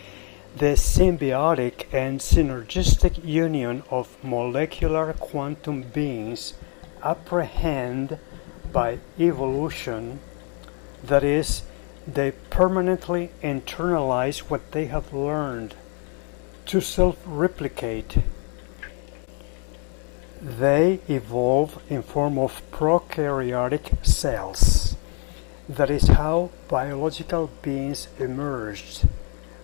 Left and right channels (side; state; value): right; quieter; 38.9 dB